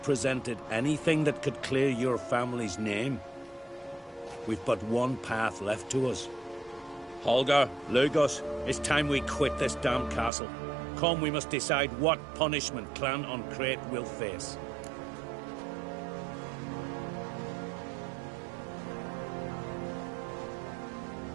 presented anything that could clear your family's name. We've but one path left to us. Holger, Lugos, it's time we quit this damn castle. Come, we must decide what punishment Clan Ancrete will face.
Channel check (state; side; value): drops out; left; at 10.3 s